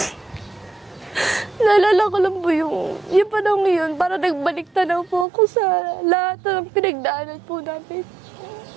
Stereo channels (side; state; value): left; drops out; at 5.2 s